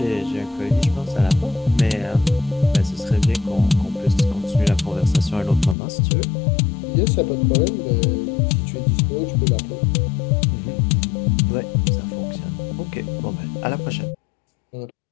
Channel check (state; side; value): drops out; right; at 5.8 s